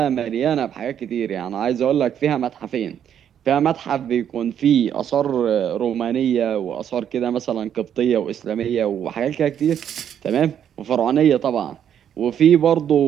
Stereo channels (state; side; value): quieter; left; 9.2 dB